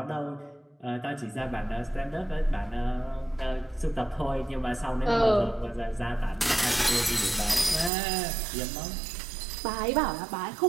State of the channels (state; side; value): drops out; left; at 7.9 s